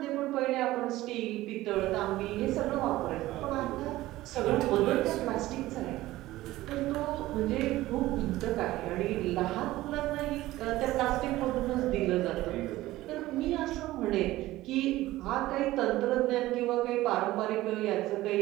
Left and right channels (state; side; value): quieter; left; 16.8 dB